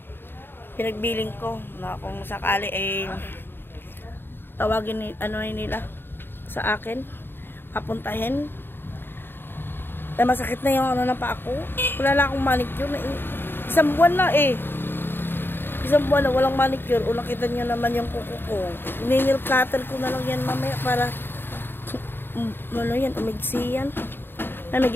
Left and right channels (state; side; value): late; right; 0.10 ms